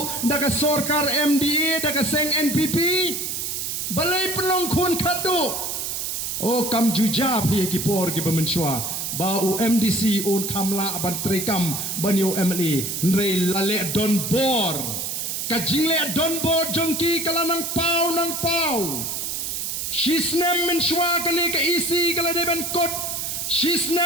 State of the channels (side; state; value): right; noise; hiss, 3 dB below the sound